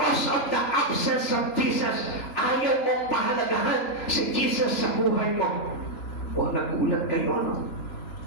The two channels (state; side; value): late; right; 3.0 ms